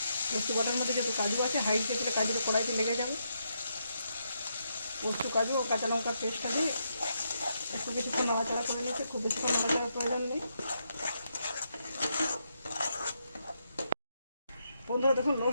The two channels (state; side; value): inverted; both; correlation -0.80